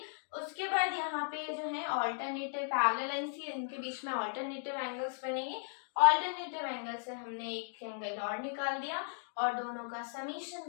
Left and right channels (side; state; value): right; silent; digital silence